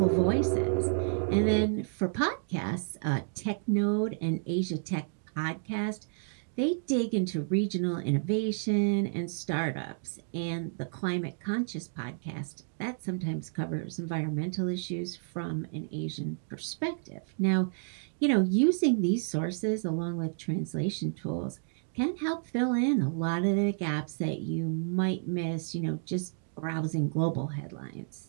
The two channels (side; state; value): left; silent; digital silence